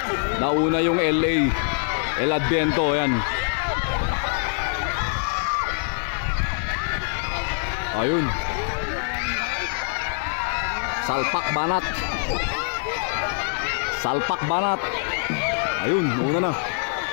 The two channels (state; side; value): silent; right; digital silence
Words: Nauna yung LA. El Adviento, ayan. Ayun. Salpak Banat. Salpak Banat. Ayun, una na.